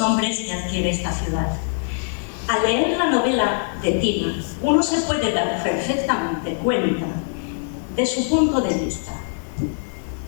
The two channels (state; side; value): silent; right; digital silence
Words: que adquiere esta ciudad. Al leer la novela de Tina, uno se puede dar perfectamente cuenta de su punto de vista.